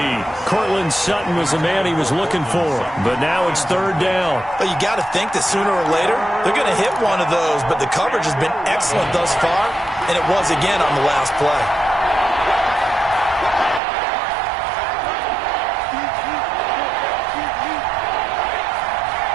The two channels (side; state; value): left; drops out; at 13.8 s